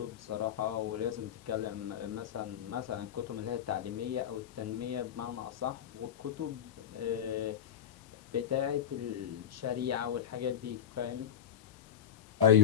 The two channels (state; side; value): quieter; right; 9.2 dB